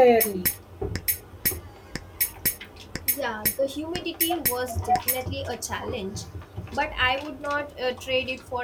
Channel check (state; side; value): identical; both; correlation 1.00